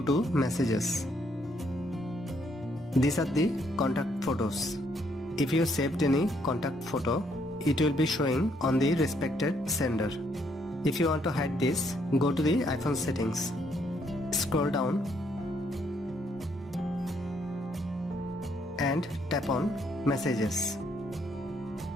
to Messages. These are the contact photos. If you saved any contact photo, it will be showing on the respected sender. If you want to hide this, go to the iPhone settings. Scroll down and tap on Messages.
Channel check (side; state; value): both; normal; correlation 0.71